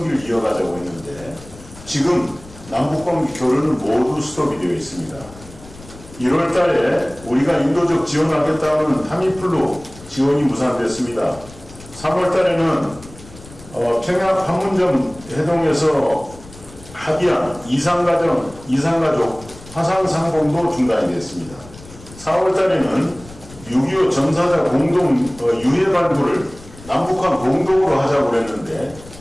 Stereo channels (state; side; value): noise; left; rumble, 19 dB below the sound